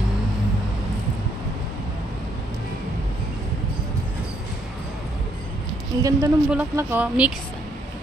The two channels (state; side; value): normal; both; correlation 0.71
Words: Ang ganda ng bulaklak, oh. Mix.